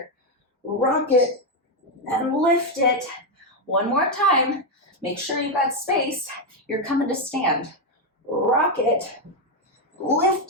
Rock it and lift it. 1 more time. Make sure you got space. You're coming to stand. Rock it,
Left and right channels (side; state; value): both; normal; correlation 0.05